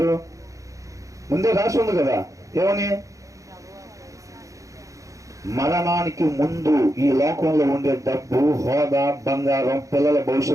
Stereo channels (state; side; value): late; left; 0.16 ms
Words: ముందే రాసి ఉంది కదా, ఏమని? మరణానికి ముందు ఈ లోకంలో ఉండే డబ్బు, హోదా, బంగారం, పిల్లల